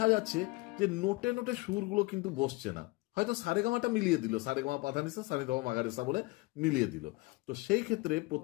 যাচ্ছে যে নোটে নোটে সুরগুলো কিন্তু বসছে না। হয়তো সারে গামাটা মিলিয়ে দিল, সারে গামা পাধানিসা সানি ধামা মাগারেসা বলে মিলিয়ে দিল। তো সেই ক্ষেত্রে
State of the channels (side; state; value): right; quieter; 23.4 dB